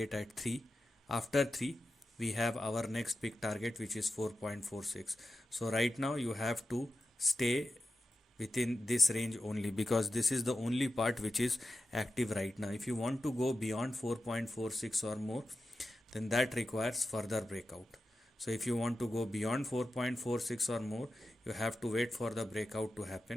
at 3. After 3, we have our next big target, which is 4.46. So right now you have to stay within this range only, because this is the only part which is active right now. If you want to go beyond 4.46 or more, then that requires further breakout. So if you want to go beyond 4.46 or more, you have to wait for the breakout to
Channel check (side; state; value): both; normal; correlation 0.92